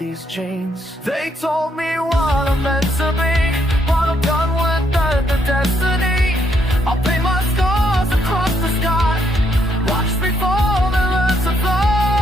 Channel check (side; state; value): both; normal; correlation 0.74